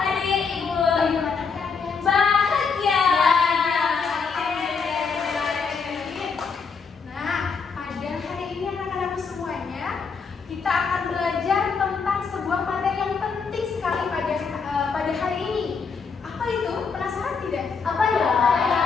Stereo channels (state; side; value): quieter; right; 5.4 dB